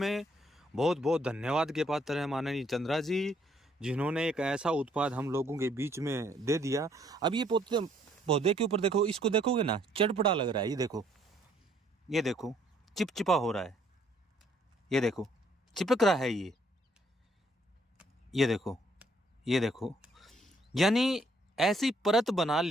बहुत बहुत धन्यवाद के पात्र है माननीय चंद्रा जी, जिन्होंने एक ऐसा उत्पाद हम लोगों के बीच में दे दिया। अब ये पौधे के ऊपर देखो, इसको देखोगे ना, चटपटा लग रहा है। ये देखो चिपचिपा हो रहा है, ये देखो चिपक रहा है ये देखो, यानी ऐसी परत बना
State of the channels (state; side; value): normal; both; correlation 0.66